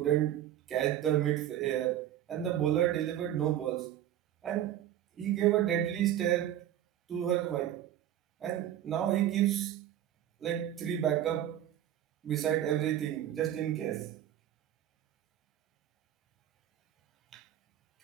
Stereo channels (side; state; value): left; quieter; 11.6 dB